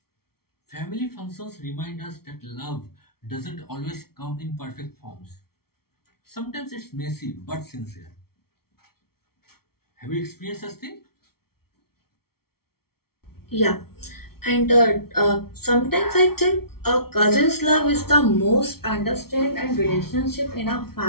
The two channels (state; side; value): late; right; 0.94 ms